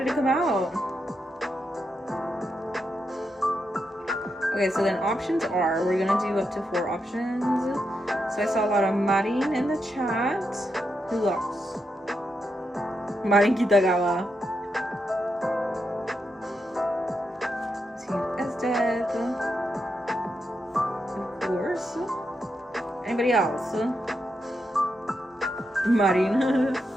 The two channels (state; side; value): normal; both; correlation 0.84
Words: it come out? Okay, so then options are, we're gonna do up to 4 options. So I saw a lot of Marin in the chat. Who else? Marin Kitagawa. Team Ezdeath. Of course. Anybody else? Marin.